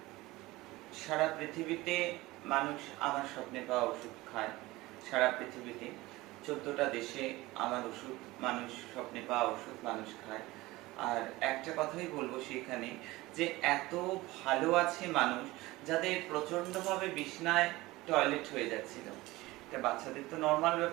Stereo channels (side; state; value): left; quieter; 19.7 dB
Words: সারা পৃথিবীতে মানুষ আমার স্বপ্নে পাওয়া ওষুধ খায়। সারা পৃথিবীতে ১৪টা দেশে আমার ওষুধ, মানুষ স্বপ্নে পাওয়া ওষুধ মানুষ খায়। আর একটা কথাই বলবো সেখানে, যে এত ভালো আছে মানুষ যাদের প্রচন্ডভাবে বিছনায় টয়লেট হয়ে যাচ্ছিল। এটা বাচ্চাদের তো নর্মাল